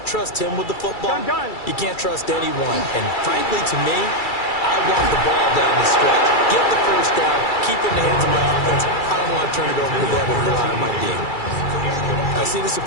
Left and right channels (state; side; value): late; right; 2.3 ms